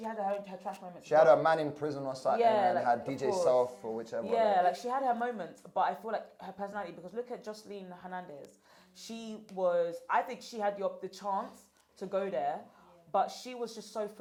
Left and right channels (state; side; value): identical; both; correlation 1.00